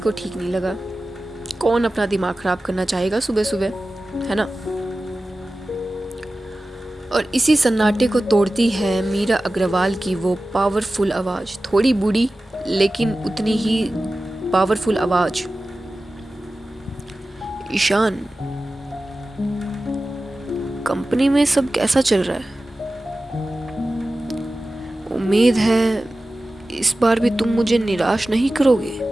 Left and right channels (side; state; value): both; normal; correlation 0.95